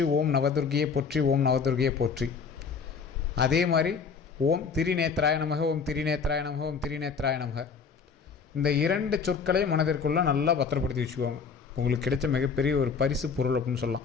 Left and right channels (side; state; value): right; quieter; 5.6 dB